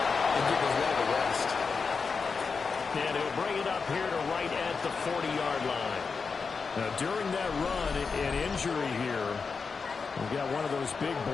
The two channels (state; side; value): quieter; right; 5.1 dB